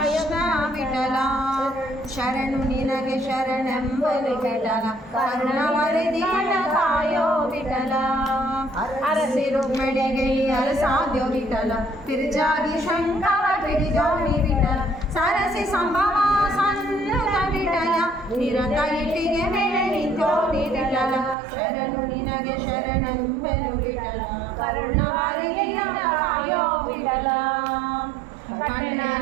ವಿಠಲ ಶರಣು ನಿನಗೆ ಶರಣೆಂಬಲು ವಿಠಲ ಕರುಣವರಿದಿಯ ಕಾಯೋ ವಿಠಲ ಅರಸಿ ರುಕ್ಮಿಣಿಗೆ ಅರಸಾದ್ಯೋ ವಿಠಲ ತಿರುಜಾಗಿ ಶಂಕರ ಪಿಡಿಜೋಣಿ ವಿಠಲ ಸರಸಿ ಸಂಭವ ಸನ್ನುತ ವಿಠಲ ನಿರತ ಇಟ್ಟಿಗೆ ಮೇಲೆ ನಿಂತೋಣಿ ವಿಠಲ ಶರಣು ನಿನಗೆ ಶರಣೆಂಬೆನು ವಿಠಲ ಕರುಣವರಿದಿಯ ಕಾಯೋ ವಿಠಲ ಕಣ್ಣನ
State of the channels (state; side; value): drops out; left; at 21.4 s